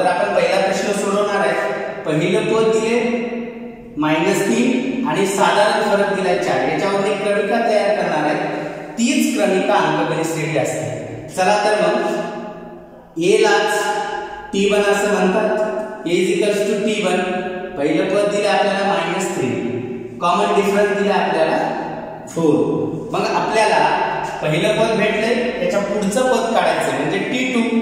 आपण पहिला प्रश्न सोडवणार आहे। पहिलं पद दिले -3 आणि साधारण फरक दिला 4, याच्यावर एक क्रमिका तयार करणार आहे। तीच क्रमिका अंकगणित श्रेणी असते। चला तर मग A लाच T1 असं म्हणतात। A = T1 पहिलं पद दिले आपल्याला -3, कॉमन डिफरन्स दिला आपल्याला 4। मग आपल्याला पहिलं पद भेटले, त्याच्या पुढचं पद काढायचं म्हणजे T2।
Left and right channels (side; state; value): both; identical; correlation 1.00